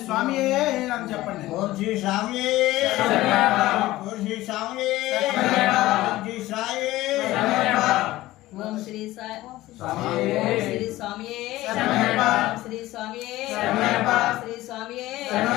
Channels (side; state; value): right; quieter; 16.9 dB